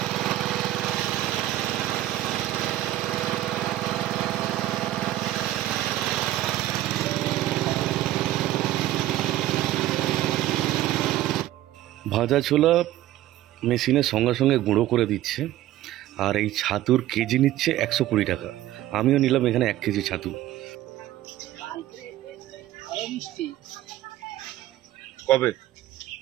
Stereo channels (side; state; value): left; quieter; 14.2 dB